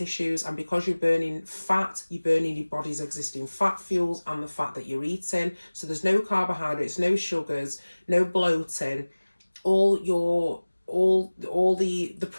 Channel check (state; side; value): inverted; both; correlation -1.00